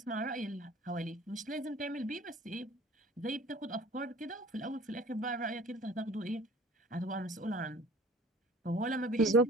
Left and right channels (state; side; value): normal; both; correlation 0.47